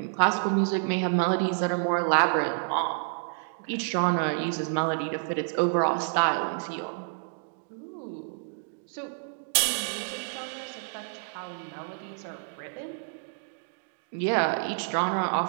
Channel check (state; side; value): silent; left; digital silence